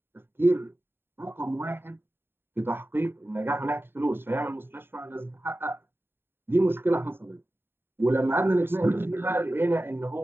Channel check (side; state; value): left; late; 0.11 ms